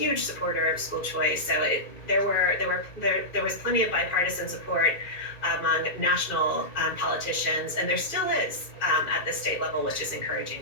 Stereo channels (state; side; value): late; right; 2.4 ms